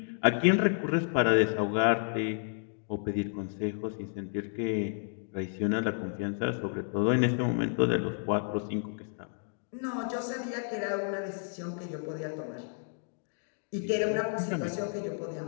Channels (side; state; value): right; silent; 57 dB below the other